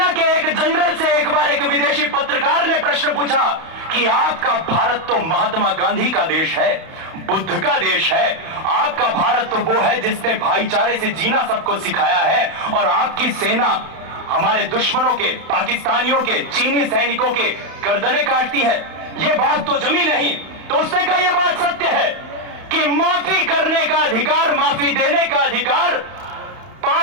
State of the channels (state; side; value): late; left; 31 ms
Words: के एक जनरल से एक बार एक विदेशी पत्रकार ने प्रश्न पूछा कि आपका भारत तो महात्मा गांधी का देश है, बुद्ध का देश है। आपका भारत तो वो है जिसने भाईचारे से जीना सबको सिखाया है, और आपकी सेना हमारे दुश्मनों के, पाकिस्तानियों के, चीनी सैनिकों के गर्दनें काटती है। ये बात तो जमी नहीं। तो उसने कहा यह बात सत्य है कि माफी करने का अधिकार, माफी देने का अधिकार,